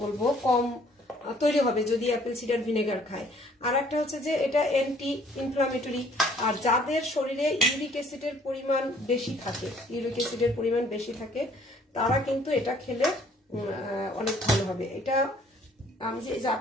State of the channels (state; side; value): normal; both; correlation 0.59